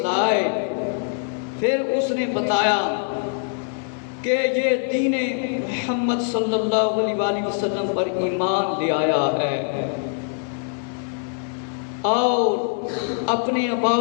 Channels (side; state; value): right; silent; 63 dB below the other